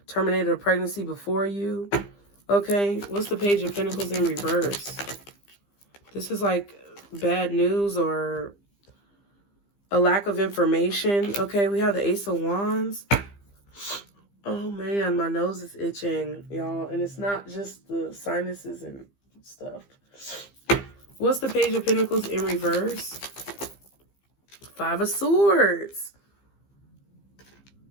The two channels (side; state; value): right; late; 15 ms